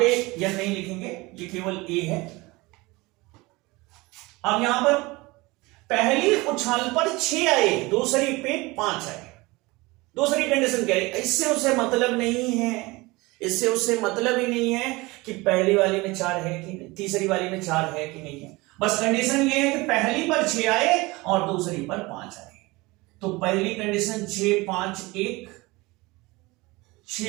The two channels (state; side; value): quieter; left; 22.7 dB